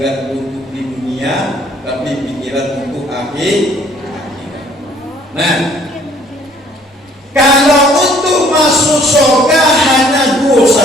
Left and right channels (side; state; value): both; normal; correlation 0.60